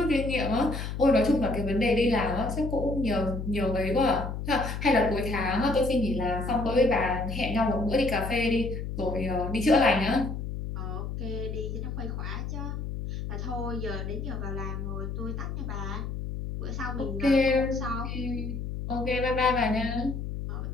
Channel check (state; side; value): noise; left; hum, 5 dB below the sound